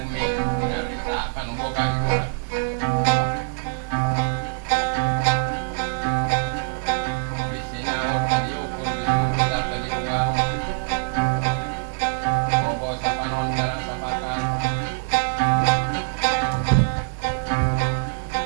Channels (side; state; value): left; silent; digital silence